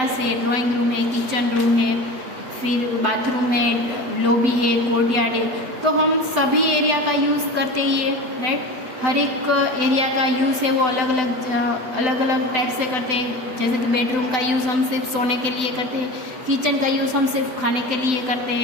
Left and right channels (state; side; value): late; left; 7.9 ms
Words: है, ड्राइंग रूम है, किचन रूम है, फिर बाथरूम है, लॉबी है, कोर्टयार्ड है, तो हम सभी एरिया का यूज़ करते ही है, राइट। हर एक एरिया का यूज़ है वो अलग अलग टाइप से करते हैं। जैसे कि बेडरूम का यूज़ हम सिर्फ सोने के लिए करते हैं, किचन का यूज़ हम सिर्फ खाने के लिए करते